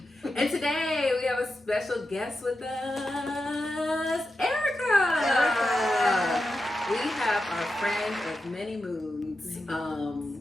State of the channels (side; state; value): both; normal; correlation 0.89